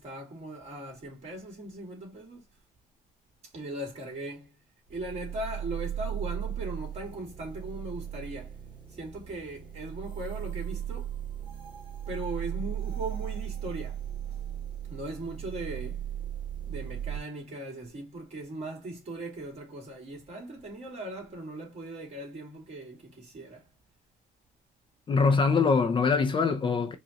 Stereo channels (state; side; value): normal; both; correlation 0.54